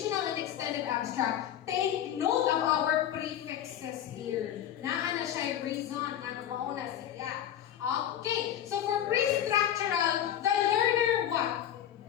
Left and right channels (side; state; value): right; quieter; 10.8 dB